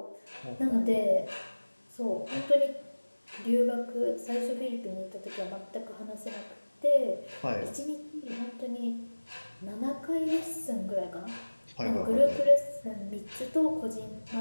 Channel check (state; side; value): inverted; both; correlation -1.00